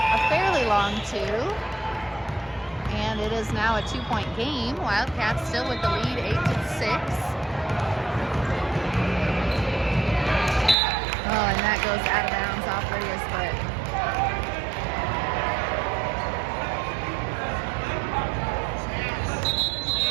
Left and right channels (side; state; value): left; drops out; at 10.8 s